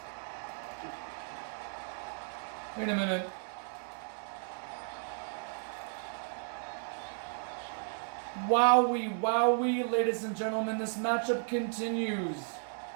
Wait a minute. Wowie, wowie, ladies and gentlemen, this matchup continues.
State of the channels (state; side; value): silent; left; 55 dB below the other